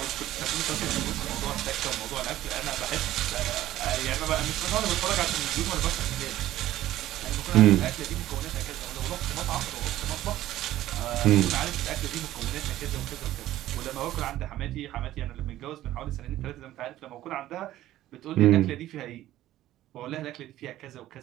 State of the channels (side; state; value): left; quieter; 14.2 dB